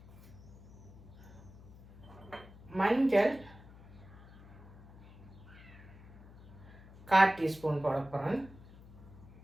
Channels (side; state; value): left; noise; hum, 19 dB below the sound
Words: மஞ்சள் 1/4 டீஸ்பூன் போட போகிறேன்.